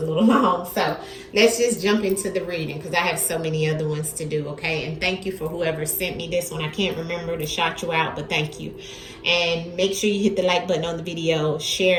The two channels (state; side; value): identical; both; correlation 1.00